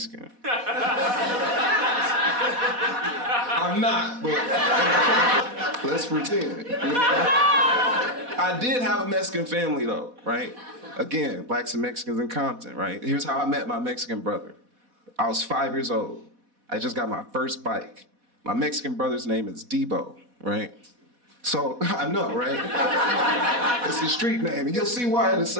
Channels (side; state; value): left; late; 4.1 ms